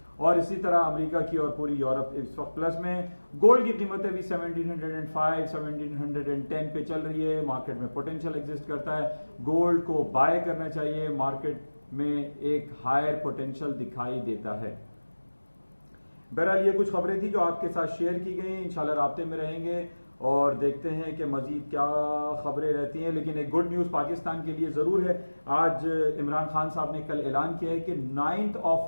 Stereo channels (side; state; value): both; inverted; correlation -1.00